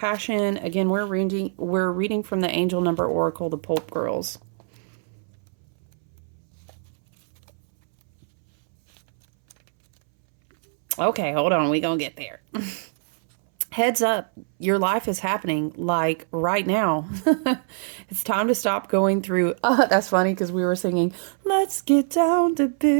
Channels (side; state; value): left; silent; 63 dB below the other